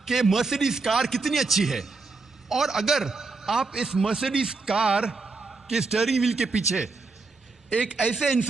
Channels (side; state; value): left; quieter; 3.9 dB